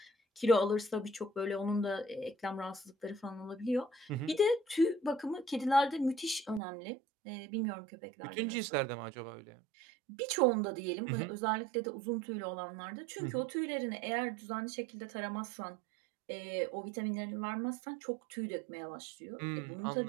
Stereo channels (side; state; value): left; drops out; at 6.6 s